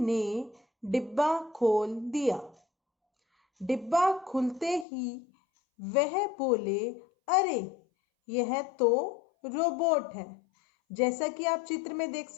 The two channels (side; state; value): right; drops out; at 4.9 s